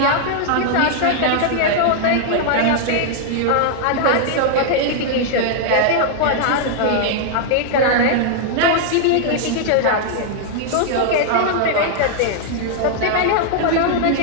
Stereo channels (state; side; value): different; both; correlation -0.01